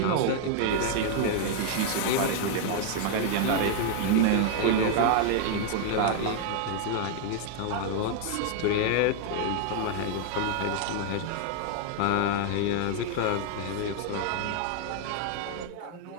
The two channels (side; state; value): both; different; correlation 0.00